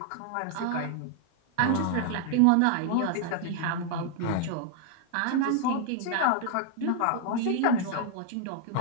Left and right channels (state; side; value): different; both; correlation 0.00